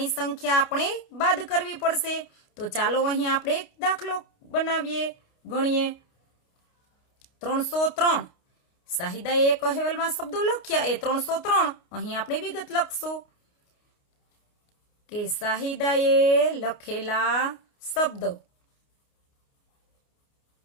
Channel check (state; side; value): late; right; 29 ms